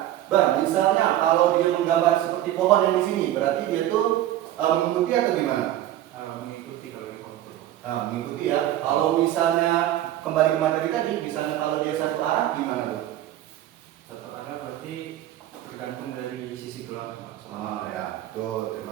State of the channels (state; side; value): quieter; left; 13.3 dB